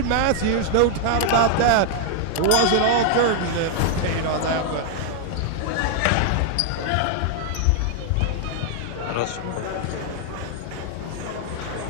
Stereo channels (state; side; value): different; both; correlation 0.00